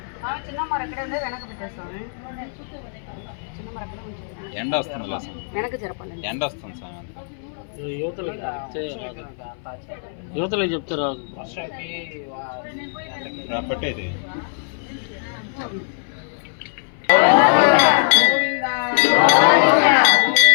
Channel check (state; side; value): silent; right; 60 dB below the other